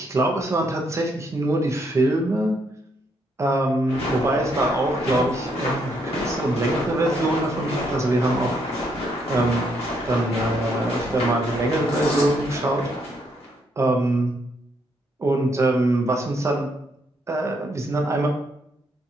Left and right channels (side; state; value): both; normal; correlation 0.74